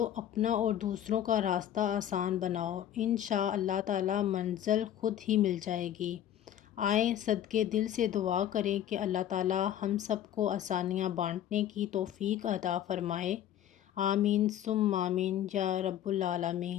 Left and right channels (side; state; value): right; quieter; 11.0 dB